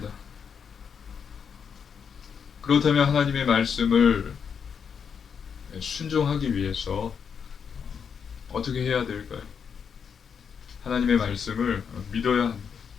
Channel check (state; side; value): quieter; right; 6.9 dB